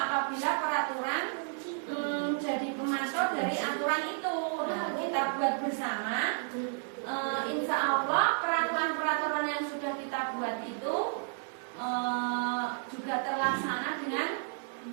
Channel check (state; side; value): silent; left; 56 dB below the other